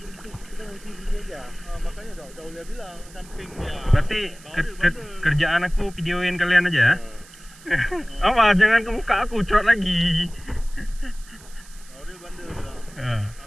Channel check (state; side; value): noise; right; hiss, 22 dB below the sound